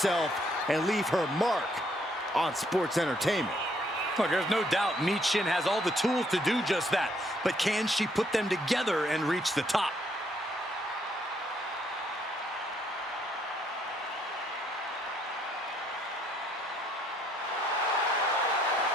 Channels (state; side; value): normal; both; correlation 0.69